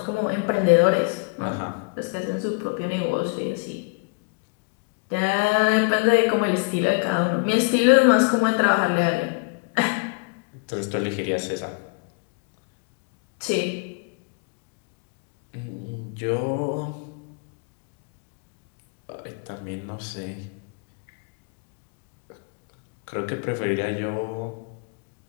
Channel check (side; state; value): right; quieter; 32.4 dB